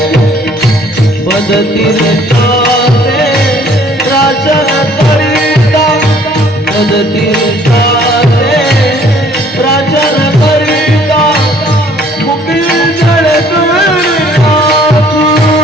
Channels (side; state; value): both; normal; correlation 0.58